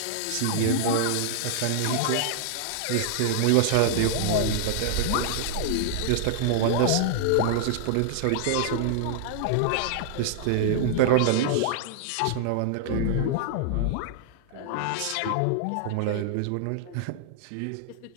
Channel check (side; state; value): both; different; correlation -0.01